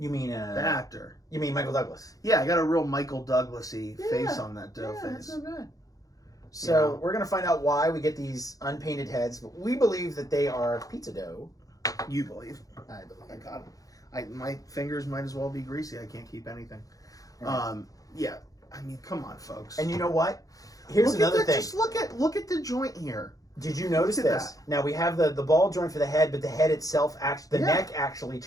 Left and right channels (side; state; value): right; late; 0.17 ms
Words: mean The actor. You mean Michael Douglas? Yeah, I got a real Michael Douglas-y face on that dough Yeah, that's face. not bad. So we're gonna find out why we get these unpainted heads, but we believe that they are pizza dough. You believe? I believe. I got them. My fingers might as well be greasy. I can't keep anything. Right. Yeah. I mean, come on, folks. And you know what? Here's another thing. Just look at the joint here. Did you notice Look at this? that. Now we have the ball joint for the head, but the head itself, the neck actually